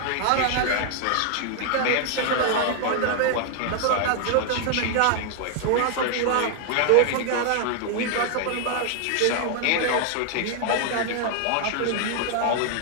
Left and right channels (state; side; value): different; both; correlation 0.00